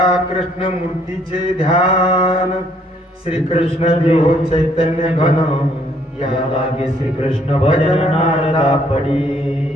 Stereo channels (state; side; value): normal; both; correlation 0.66